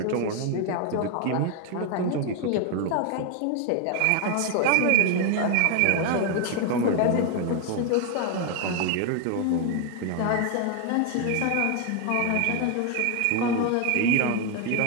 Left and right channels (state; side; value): different; both; correlation 0.01